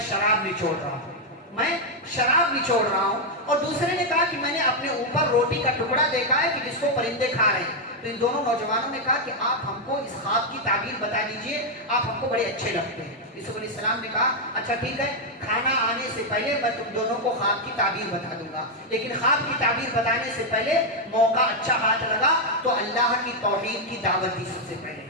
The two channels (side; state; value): both; normal; correlation 0.00